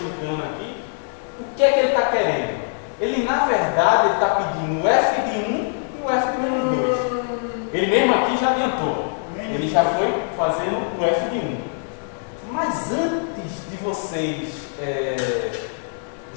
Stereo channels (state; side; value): silent; right; digital silence